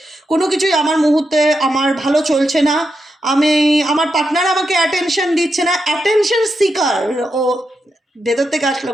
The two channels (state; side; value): normal; both; correlation 0.85